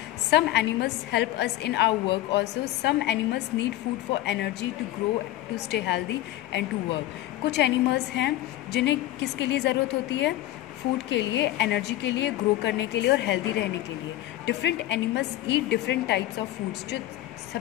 Some animals help us in our work also. Some animals need food for energy to grow to stay healthy and to work. कुछ एनिमल्स हैं जिन्हें किसके लिए ज़रूरत होती है? फूड के लिए, एनर्जी के लिए, ग्रो करने के लिए और हेल्दी रहने के लिए। Different animals eat different types of foods. जो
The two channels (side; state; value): right; quieter; 14.9 dB